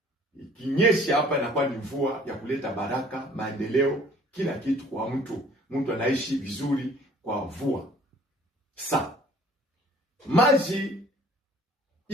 ikinyesha hapa inakuwa ni mvua ya kuleta baraka, maendeleo, kila kitu kwa mtu. Mtu anaishi vizuri kwa mvua. Sasa maji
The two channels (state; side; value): normal; both; correlation 0.53